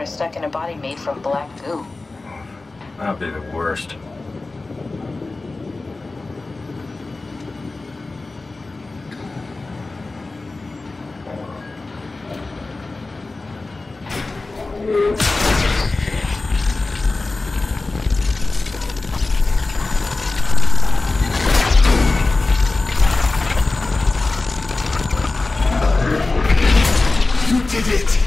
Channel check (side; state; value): right; quieter; 3.4 dB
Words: stuck in a body made from black goo. That'd be the worst. You did it!